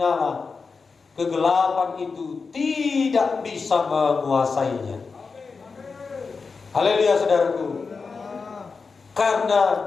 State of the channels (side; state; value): right; quieter; 4.7 dB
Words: kegelapan itu tidak bisa menguasainya. Haleluya, saudaraku. Karena